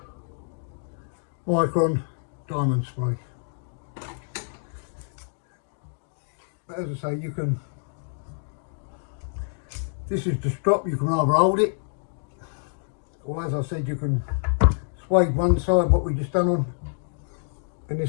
micron diamond spray. But as I say, you can. This is the strop. You can either hold it, or as I said, you can suede one side, what we just done on, and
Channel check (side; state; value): right; silent; digital silence